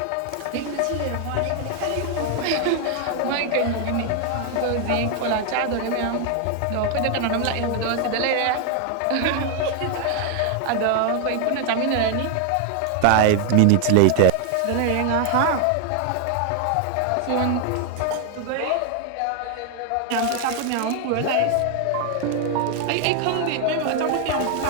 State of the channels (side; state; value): both; different; correlation 0.00